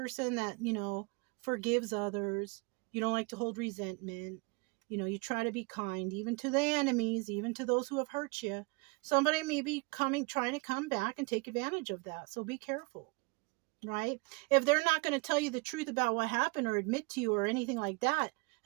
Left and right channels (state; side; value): quieter; left; 29.1 dB